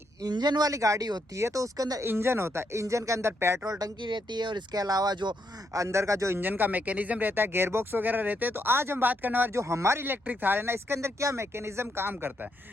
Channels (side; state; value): both; normal; correlation 0.78